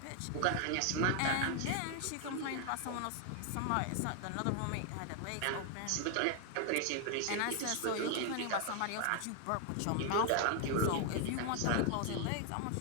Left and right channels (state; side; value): different; both; correlation 0.00